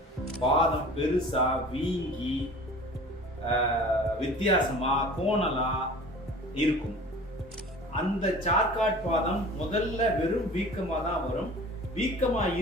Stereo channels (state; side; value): normal; both; correlation 0.42